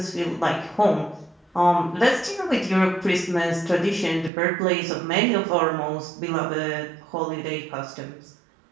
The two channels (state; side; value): drops out; left; at 4.3 s